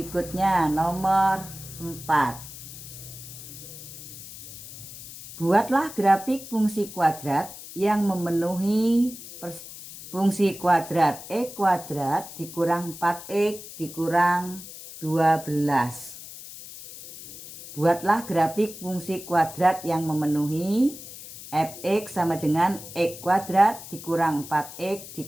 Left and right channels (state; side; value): noise; left; hiss, 14 dB below the sound